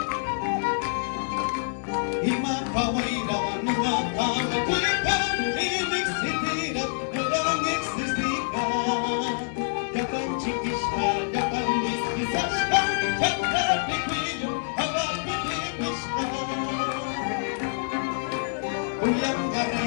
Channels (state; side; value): silent; right; digital silence